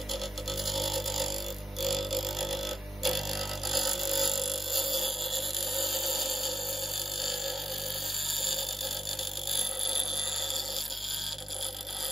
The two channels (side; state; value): both; normal; correlation 0.83